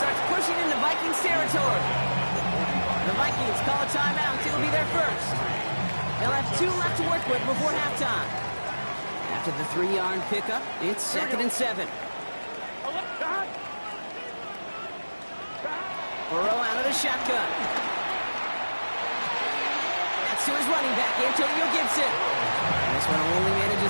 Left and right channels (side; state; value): both; inverted; correlation -1.00